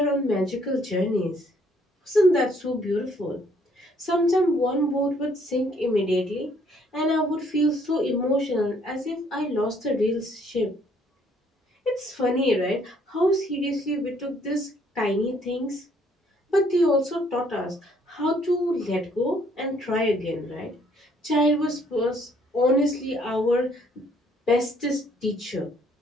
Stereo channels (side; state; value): both; normal; correlation 0.65